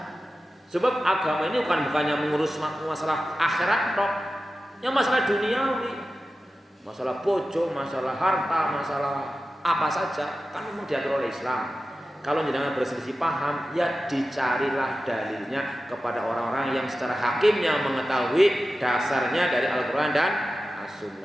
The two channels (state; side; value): normal; both; correlation 0.94